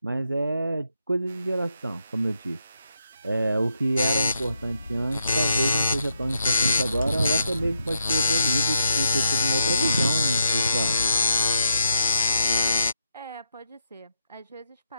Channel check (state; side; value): inverted; both; correlation -0.80